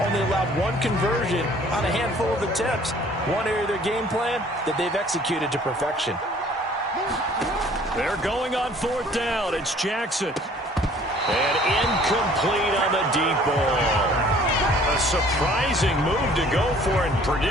only allowed 1 conversion on a handful of attempts. One area of their game plan that they've executed to perfection. They're going on fourth down. It's Jackson. And incomplete on the deep ball. A surprising move to go for it.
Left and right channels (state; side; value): normal; both; correlation 0.54